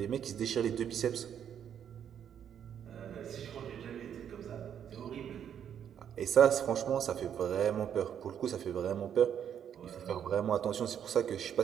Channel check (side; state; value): left; quieter; 8.9 dB